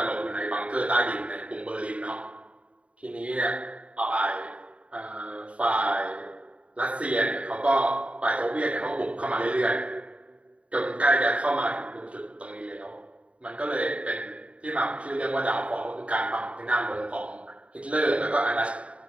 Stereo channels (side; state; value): left; late; 0.064 ms